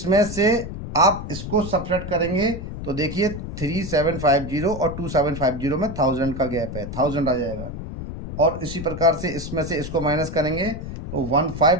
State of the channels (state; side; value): noise; left; rumble, 8 dB below the sound